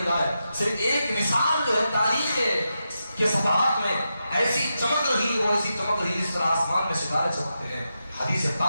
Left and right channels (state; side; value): inverted; both; correlation -0.88